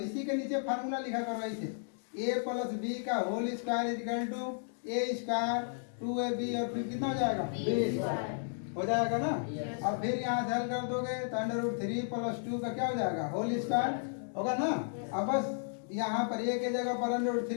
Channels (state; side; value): silent; right; digital silence